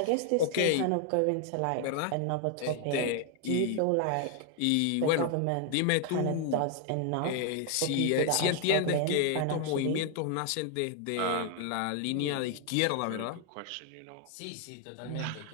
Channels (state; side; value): different; both; correlation 0.00